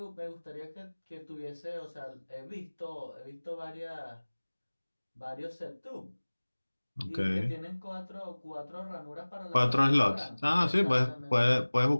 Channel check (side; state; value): both; inverted; correlation -1.00